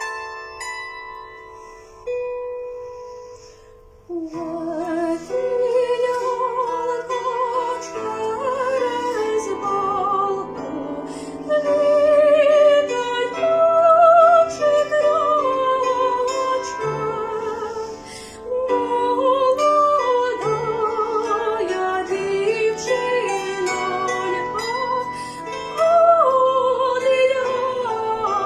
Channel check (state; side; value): identical; both; correlation 1.00